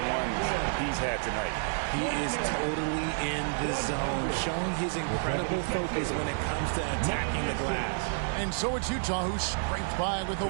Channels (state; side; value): silent; left; 58 dB below the other